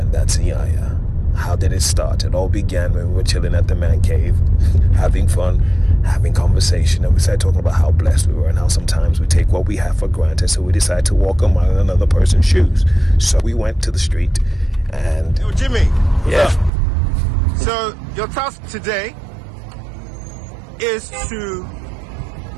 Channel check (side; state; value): left; drops out; at 16.7 s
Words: that's Iyanya. How did it start? It all began when we were chilling at the man cave, having fun, having conversation, and we started talking about how blessed we were and how sometimes we take what we have for granted, so we decided to walk a mile in another person's shoes. So we went to the street and... Yo, Jimmy. Yeah. So your task today is to